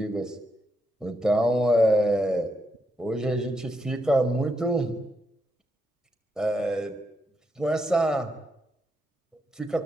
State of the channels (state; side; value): normal; both; correlation 0.82